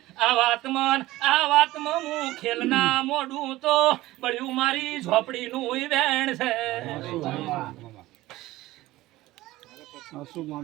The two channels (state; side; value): quieter; left; 17.4 dB